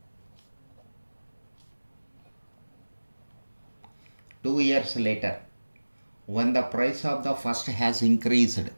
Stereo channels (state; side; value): inverted; both; correlation -1.00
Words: 2 years later, when the price of the first has increased,